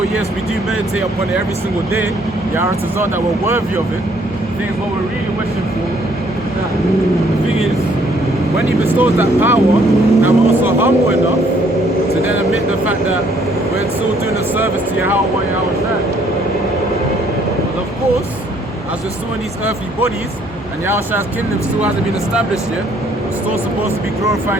yes, we do meditate upon it every single day, Yahweh to thought that we're worthy of it. The thing is, what we're really wishing for is that the thing is, when He bestows that power, that we're also humble enough to then admit the fact that we're still doing a service to Yahweh Yahushua. But of course, as we're still in these earthly bodies, and Yahushua's kingdom still hasn't been established yet, we're still supposed to be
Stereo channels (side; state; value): both; normal; correlation 0.64